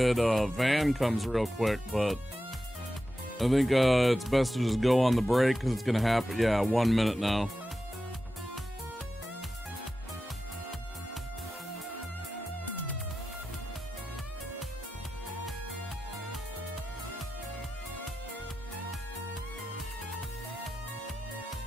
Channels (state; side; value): normal; both; correlation 0.92